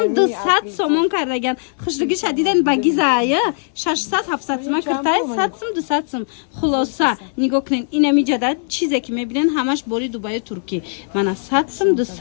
200 сомон кардаган хушруги шадиден багизая 600 700 сом киртай 100 сом 200 сом хулоса нигоҳ кунен инами ҷада чизе ки мебинен ҳамаш бори дубаи турки мана 100 сом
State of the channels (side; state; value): right; silent; 62 dB below the other